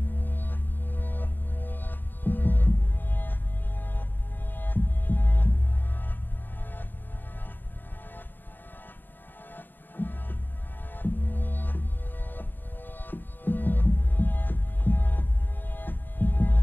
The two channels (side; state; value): right; late; 0.091 ms